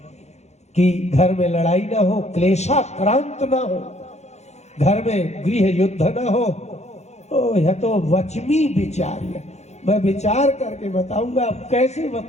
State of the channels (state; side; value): late; right; 0.32 ms